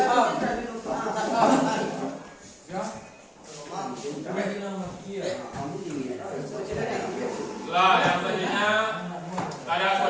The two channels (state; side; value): identical; both; correlation 1.00